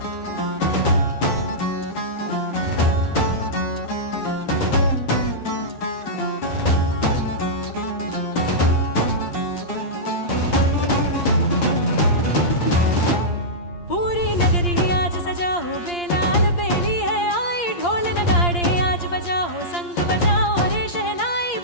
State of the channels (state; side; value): late; right; 8.6 ms